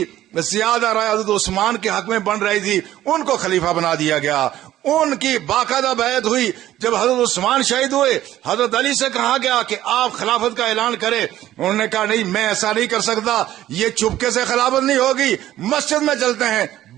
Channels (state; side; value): quieter; left; 13.5 dB